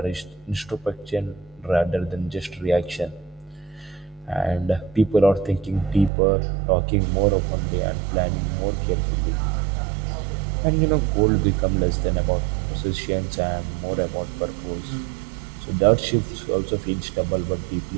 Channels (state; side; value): drops out; left; at 6.1 s